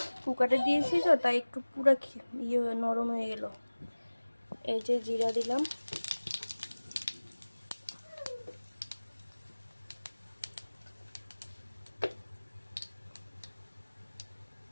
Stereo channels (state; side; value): inverted; both; correlation -1.00